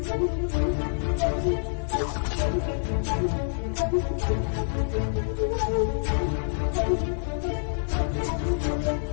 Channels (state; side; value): silent; right; digital silence